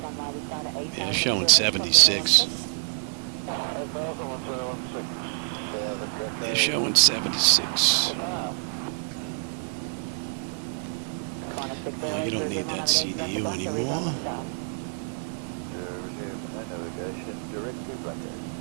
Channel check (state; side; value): silent; left; 60 dB below the other